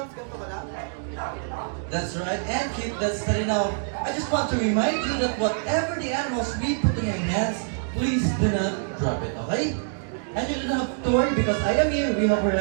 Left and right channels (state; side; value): silent; left; digital silence